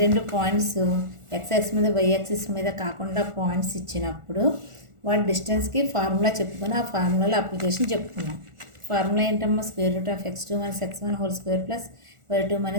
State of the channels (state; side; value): late; left; 1.4 ms